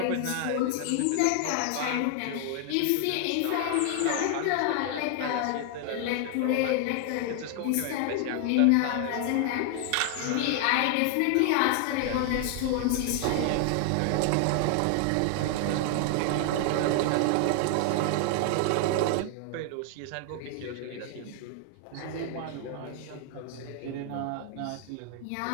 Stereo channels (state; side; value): different; both; correlation 0.00